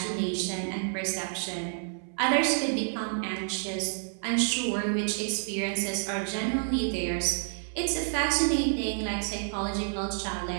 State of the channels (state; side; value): silent; left; 58 dB below the other